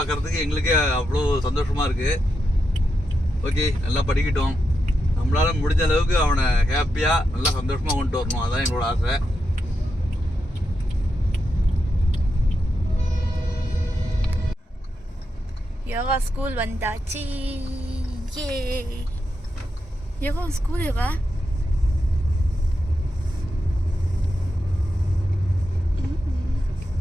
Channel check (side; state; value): both; normal; correlation 0.86